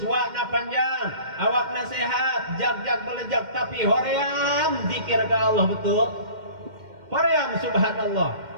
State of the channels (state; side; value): late; left; 2.1 ms